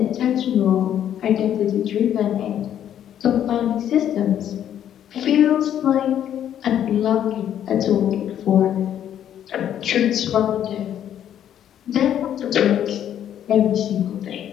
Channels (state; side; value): quieter; right; 10.3 dB